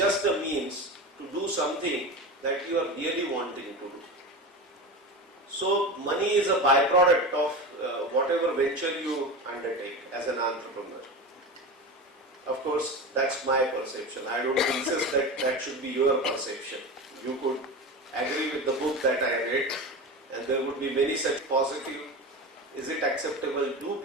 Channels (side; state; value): both; normal; correlation 0.25